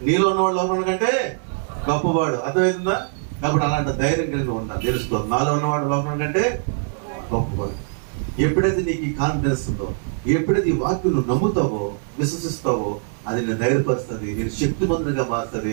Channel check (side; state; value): left; silent; digital silence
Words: నీలో ఉన్నవాడు లోపల కంటే గొప్పవాడు. అర్థమవుతుందా? కాబట్టి అలాంటి ధైర్యం కలిగి ఉండాలి. తెలుసుకో, నాలో ఉన్నవాడు లోపల కంటే గొప్పవాడు. ఎప్పుడైతే నీకు ఈ కాన్ఫిడెన్స్ ఉందో, ఎప్పుడైతే ఈ వాక్యం నువ్వు నమ్ముతావో, విశ్వసిస్తావో, అది నేను ధైర్యపరుస్తుంది, నేను శక్తిమంతునిగా మారుతుంది.